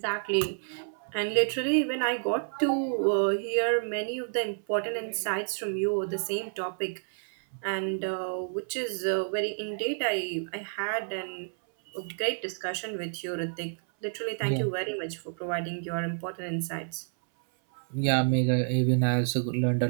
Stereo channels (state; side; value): silent; left; 58 dB below the other